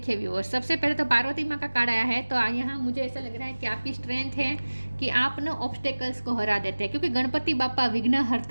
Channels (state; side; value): inverted; both; correlation -1.00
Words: व्यूअर्स, सबसे पहले तो पार्वती माँ का कार्ड आया है, तो यहाँ मुझे ऐसा लग रहा है कि आपकी स्ट्रेंथ है कि आप ना ऑब्स्टेकल्स को हरा देते हैं, क्योंकि गणपति बापा